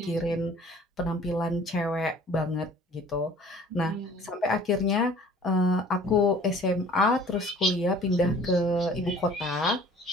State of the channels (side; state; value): both; normal; correlation 0.50